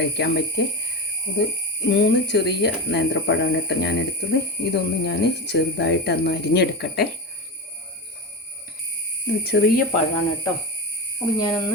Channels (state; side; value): normal; both; correlation 0.21